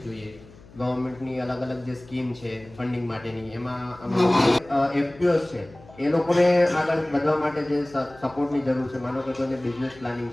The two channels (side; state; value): left; noise; hum, 22 dB below the sound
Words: જોઈએ, ગવર્મેન્ટની અલગ અલગ જે સ્કીમ છે ફંડિંગ માટેની, એમાં એફપીઓસ છે એ લોકોને આગળ વધવા માટે જે સપોર્ટની જરૂર છે, માનો કે કોઈને બિઝનેસ પ્લાનિંગ